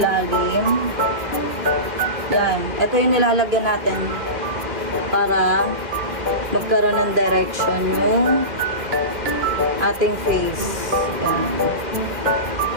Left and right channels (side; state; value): left; late; 2.4 ms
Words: Yan. Ito yung nilalagyan natin para magkaroon ng direction yung ating face. Yan.